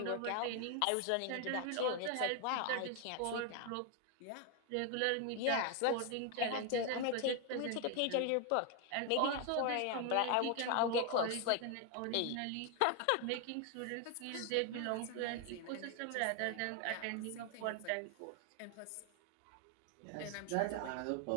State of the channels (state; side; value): different; both; correlation 0.01